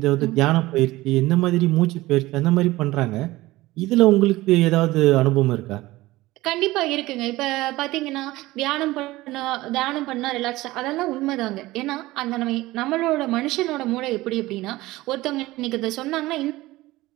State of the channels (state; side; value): quieter; left; 18.5 dB